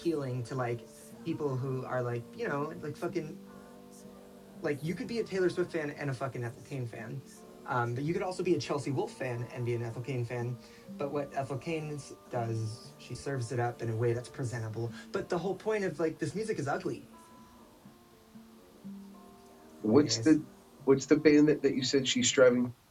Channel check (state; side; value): identical; both; correlation 1.00